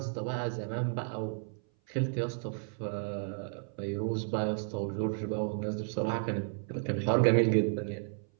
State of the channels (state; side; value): silent; left; 56 dB below the other